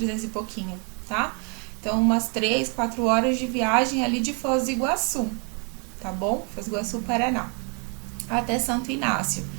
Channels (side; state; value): left; quieter; 36.0 dB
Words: e pouquinho, tá? Então, umas 3, 4 horas de viagem ali de Foz do Iguaçu, tá bom? Foz do Iguaçu, Paraná, até Santo Inácio.